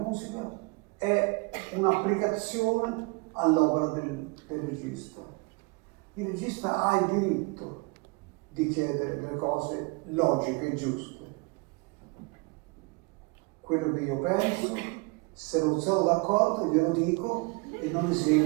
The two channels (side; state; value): left; quieter; 28.2 dB